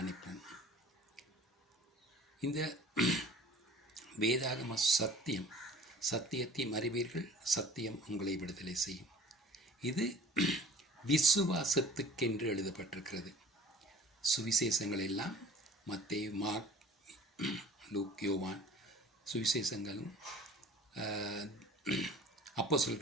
இந்த வேதாகம சத்தியம், சத்தியத்தை அறிவீர்கள், சத்தியம் உங்களை விடுதலை செய்யும். இது விசுவாசத்துக்கென்று எழுதப்பட்டிருக்கிறது. சுவிசேஷங்கள் எல்லாம் மத்தேயு, மார்க், லூக், யோவான் சுவிசேஷங்களும்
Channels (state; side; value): normal; both; correlation 0.45